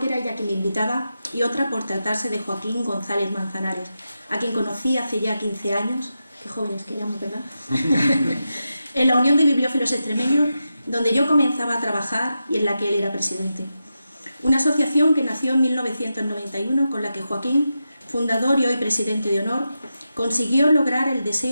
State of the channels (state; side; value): inverted; both; correlation -0.89